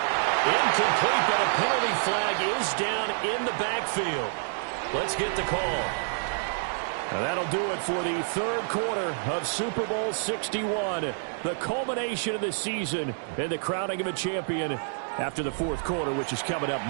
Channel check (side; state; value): left; silent; digital silence